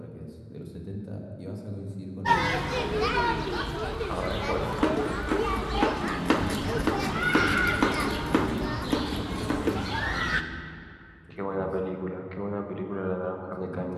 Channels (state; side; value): identical; both; correlation 1.00